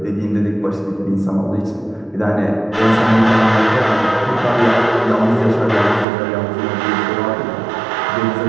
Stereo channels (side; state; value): left; drops out; at 6.1 s